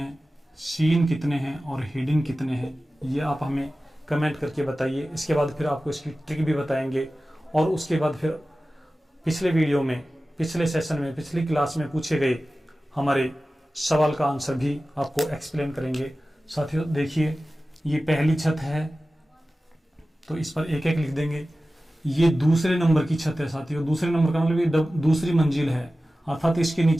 सीन कितने हैं और हिडन कितने हैं, ये आप हमें कमेंट करके बताइए। इसके बाद फिर आपको इसकी ट्रिक भी बताएंगे और उसके बाद फिर पिछले वीडियो में, पिछले सेशन में, पिछली क्लास में पूछे गए हमारे सवाल का आंसर भी आपको एक्सप्लेन करेंगे। साथियों देखिए ये पहली छत है तो इस पर एक एक लिख देंगे। ये दूसरे नंबर की छत है साथियों, दूसरे नंबर का मतलब ये दूसरी मंजिल है, अर्थात इसके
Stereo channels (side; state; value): both; normal; correlation 0.95